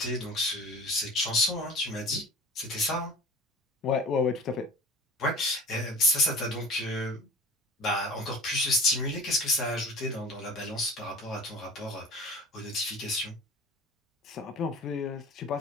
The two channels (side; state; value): both; normal; correlation 0.39